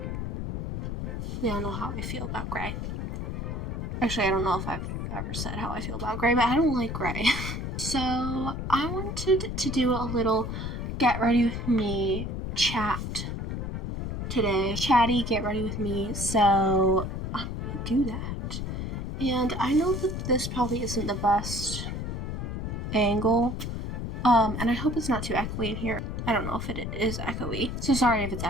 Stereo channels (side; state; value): left; noise; rumble, 4 dB below the sound